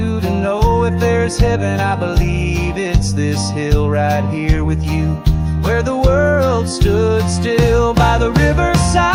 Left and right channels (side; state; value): both; identical; correlation 1.00